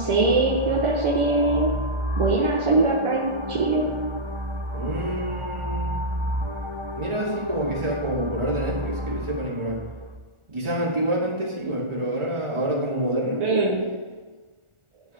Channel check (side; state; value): left; late; 1.4 ms